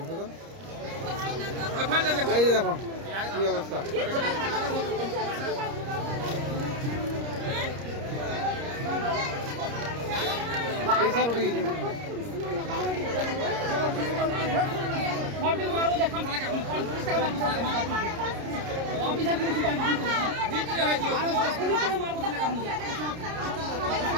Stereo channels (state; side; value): late; left; 30 ms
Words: এই যে দেখো কি অবস্থা।